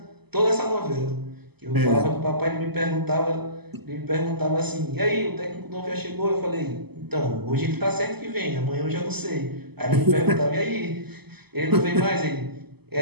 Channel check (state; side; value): late; left; 0.97 ms